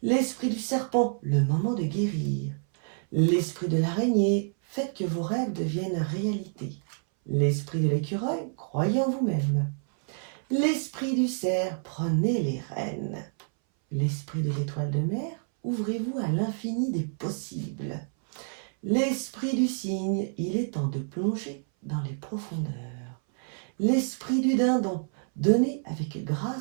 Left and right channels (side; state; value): left; silent; 59 dB below the other